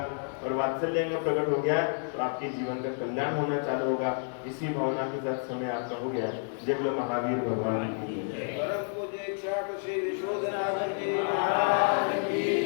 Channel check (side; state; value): right; silent; 58 dB below the other